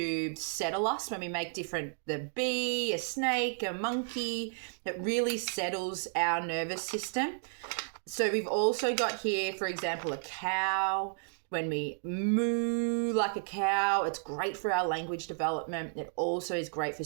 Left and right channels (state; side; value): silent; left; digital silence